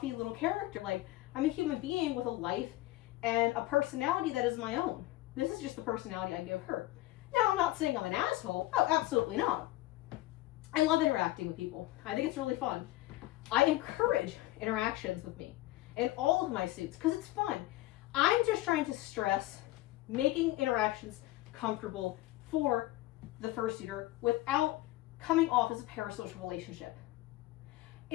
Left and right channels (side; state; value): right; quieter; 17.3 dB